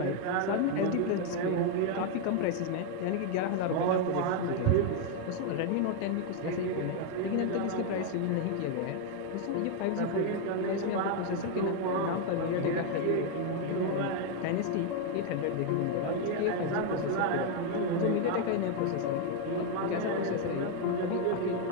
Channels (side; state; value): both; different; correlation 0.00